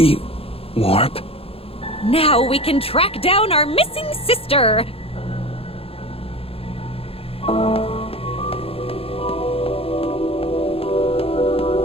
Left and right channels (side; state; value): right; late; 0.28 ms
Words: warp? Now we can track down our missing sister.